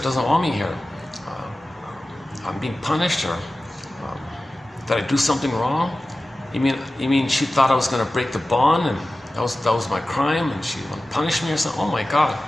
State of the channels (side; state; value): both; normal; correlation 0.95